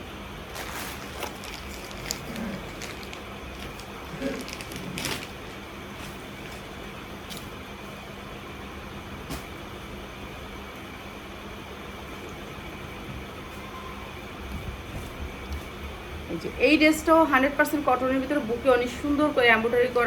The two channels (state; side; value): identical; both; correlation 1.00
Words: এই ড্রেসটাও 100% কটনের ভিতরে, বুকে অনেক সুন্দর করে এমব্রয়ডারি